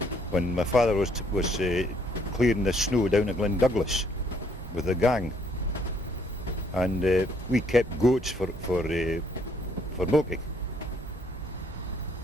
when my father was clearing the snow down at Glendouglas with a gang, and we kept goats for milking,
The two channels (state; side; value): normal; both; correlation 0.67